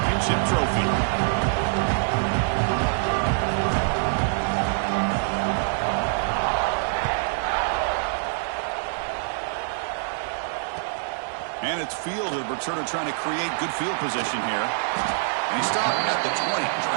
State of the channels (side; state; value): left; silent; 62 dB below the other